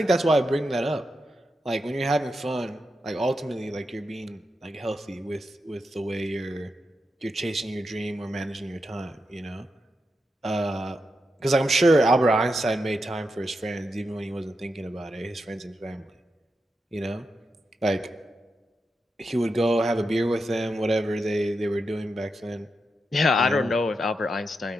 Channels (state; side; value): normal; both; correlation 0.86